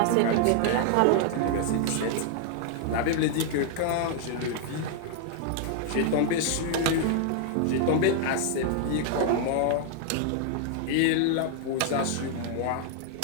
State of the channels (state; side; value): different; both; correlation 0.00